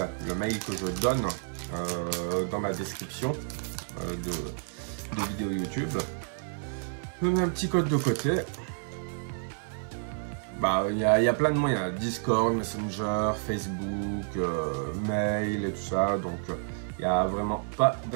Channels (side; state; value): left; silent; digital silence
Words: le mail que je donne dans ma description de vidéo YouTube. Je mets un petit code de côté. Bah, il y a plein de moyens, Discord, Messenger, Facebook, mail et tout ça, donc il n'y a vraiment pas